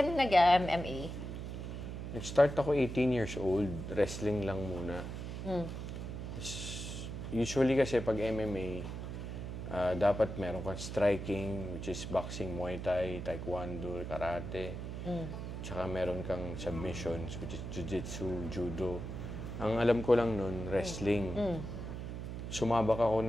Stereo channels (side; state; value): right; noise; hum, 6 dB below the sound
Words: na nag-MMA? Nag-start ako 18 years old. Wrestling lang muna. Usually kasi pag MMA, dapat meron kang striking, which is boxing, Muay Thai, Taekwondo, Karate. Tsaka meron kang submissions, which is Jiu-Jitsu, Judo. Ang alam ko lang nun, wrestling. Sumabak ako